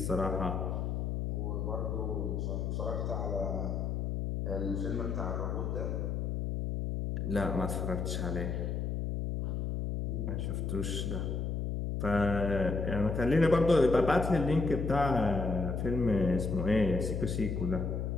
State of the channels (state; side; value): noise; left; hum, 1 dB below the sound